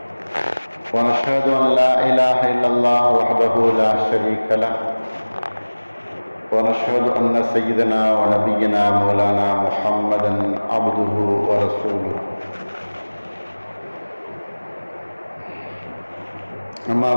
ونشهد أن لا إله إلا الله وحده لا شريك له ونشهد أن سيدنا ونبينا مولانا محمدا عبده ورسوله أما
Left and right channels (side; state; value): both; inverted; correlation -1.00